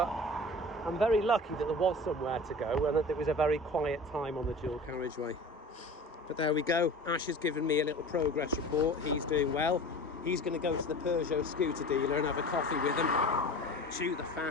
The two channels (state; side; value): normal; both; correlation 0.37